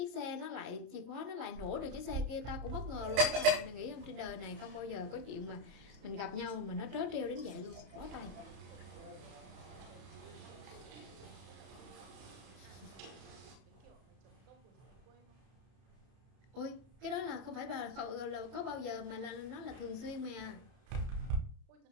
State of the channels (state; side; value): late; left; 31 ms